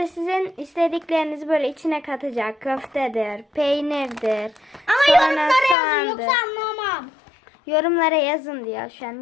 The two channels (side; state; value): right; drops out; at 5.8 s